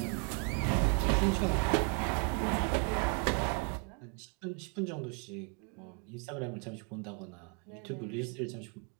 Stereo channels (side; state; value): left; quieter; 38.2 dB